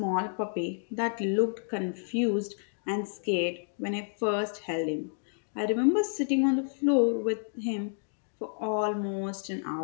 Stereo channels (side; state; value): right; silent; digital silence